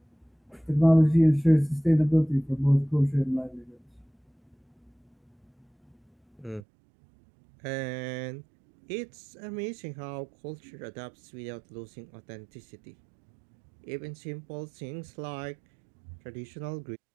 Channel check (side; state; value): left; drops out; at 6.6 s